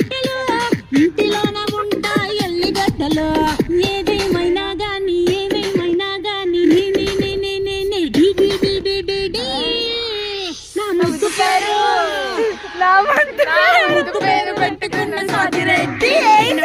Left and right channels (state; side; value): identical; both; correlation 1.00